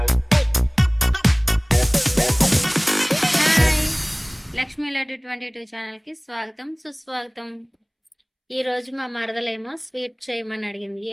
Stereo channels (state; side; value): identical; both; correlation 1.00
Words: Lakshmi Laddu 22 ఛానల్కి స్వాగతం సుస్వాగతం. ఈరోజు మా మరదలేమో స్వీట్ చేయమని అడిగింది.